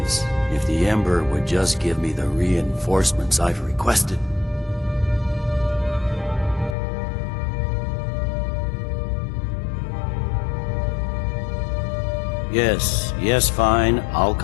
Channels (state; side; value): drops out; right; at 6.8 s